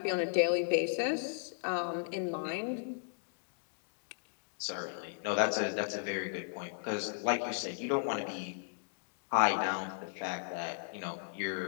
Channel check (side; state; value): right; silent; digital silence